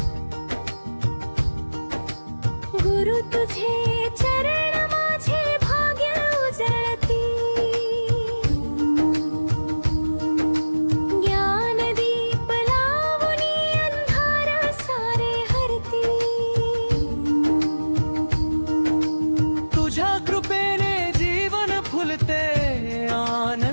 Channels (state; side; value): inverted; both; correlation -1.00